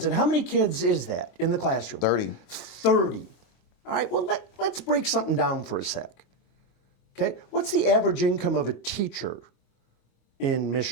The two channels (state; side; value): late; right; 25 ms